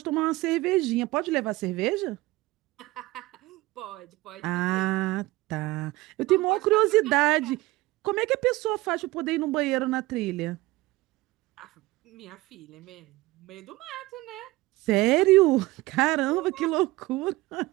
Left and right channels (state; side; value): quieter; left; 19.8 dB